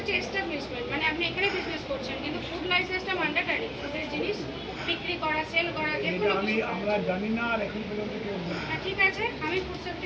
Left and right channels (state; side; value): identical; both; correlation 1.00